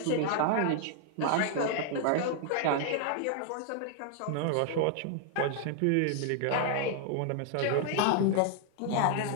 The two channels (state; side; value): different; both; correlation 0.00